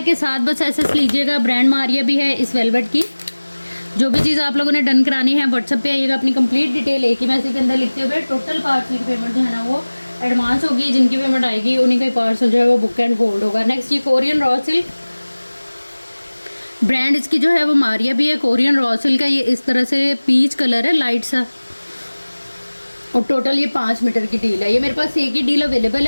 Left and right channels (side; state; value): both; inverted; correlation -1.00